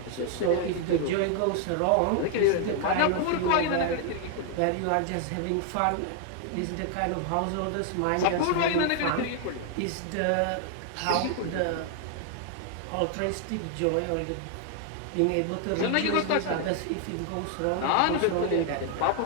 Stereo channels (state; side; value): different; both; correlation 0.00